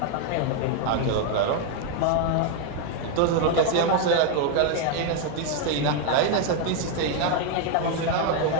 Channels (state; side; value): different; both; correlation 0.01